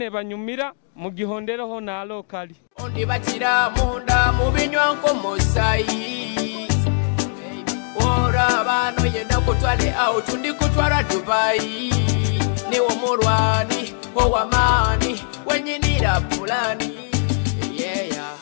banyumira mu gihondereho na lokali ondi batira munda mu binywa nko musayi ora bano yenda kutwale out ndi kutwara Dubai ni omurwani owamani wenyinira fulani yeah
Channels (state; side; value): silent; right; 57 dB below the other